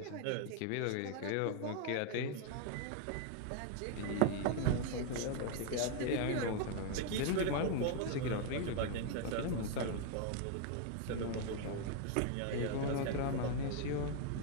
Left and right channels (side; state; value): both; different; correlation 0.00